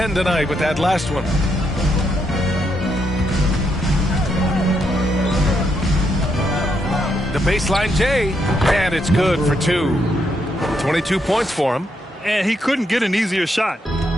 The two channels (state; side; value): normal; both; correlation 0.78